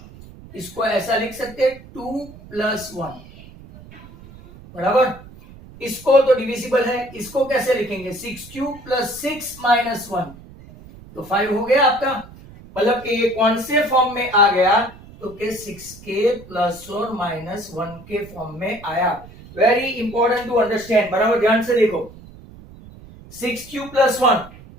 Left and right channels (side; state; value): right; noise; rumble, 19 dB below the sound